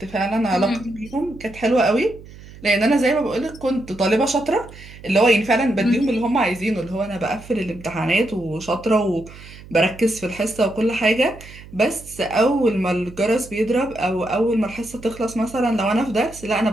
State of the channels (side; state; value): right; noise; hum, 18 dB below the sound